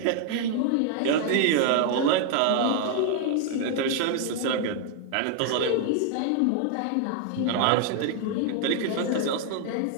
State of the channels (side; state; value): both; different; correlation 0.00